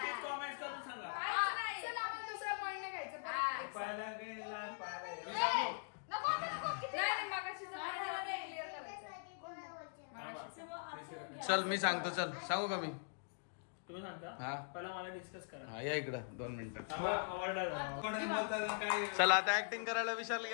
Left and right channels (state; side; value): silent; right; digital silence